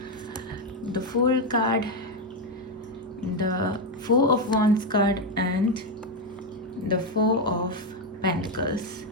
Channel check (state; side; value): normal; both; correlation 0.06